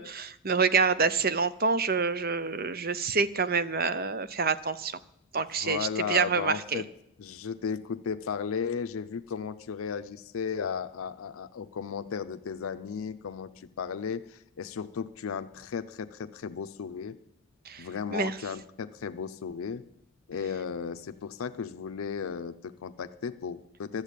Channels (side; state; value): both; normal; correlation -0.09